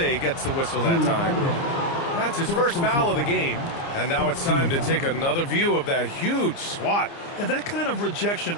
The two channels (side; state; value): right; late; 29 ms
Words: gets the whistle that time. That's his first foul of the game. And now it's time to take another view of that huge swat. And that kind of rejection